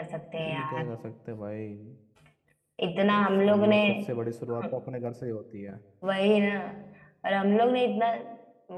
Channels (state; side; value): identical; both; correlation 1.00